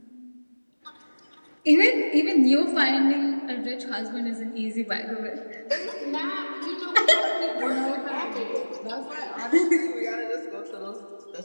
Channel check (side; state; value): both; inverted; correlation -1.00